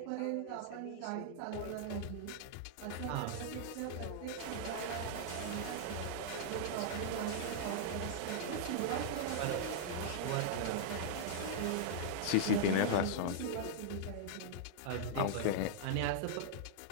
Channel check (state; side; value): different; both; correlation -0.02